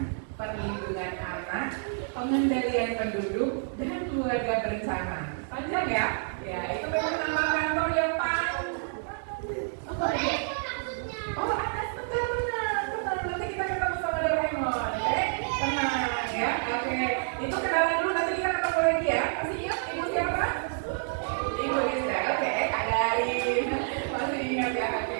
Perlindungan Anak, Pengendalian Penduduk, dan Keluarga Berencana. Panjang ya? Ya, itu memang nama kantor yang panjang. Oh, atas benar. Nanti kita ketemu sama Doraemon, oke? Tenang ya, oke. Itu kenalan dulu, nanti kita ketemu lagi ya. Masih ingat ibu siapa? Ibu Lisa, oke. Kak Darin, masih ingat ya,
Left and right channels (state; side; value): silent; left; digital silence